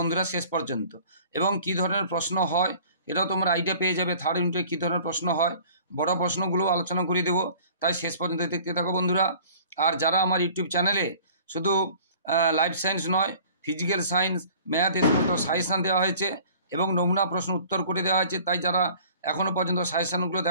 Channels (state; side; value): inverted; both; correlation -0.48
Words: শেষ পর্যন্ত, এবং কী ধরনের প্রশ্ন হয় এটাও তোমরা আইডিয়া পেয়ে যাবে। থার্ড ইউনিটে কী ধরনের প্রশ্ন হয় বড় প্রশ্নগুলো আলোচনা করে দেবো, তাই শেষ পর্যন্ত দেখতে থাকো বন্ধুরা। আর যারা আমার ইউটিউব চ্যানেলে শুধু লাইফ সায়েন্স নয়, ফিজিক্যাল সায়েন্স, ম্যাথ এ সমস্ত সাজেশান দেওয়া হয়েছে এবং নমুনা প্রশ্ন উত্তর করে দেওয়া হয়েছে, তাই যারা এখনও পর্যন্ত সাজেশানগুলো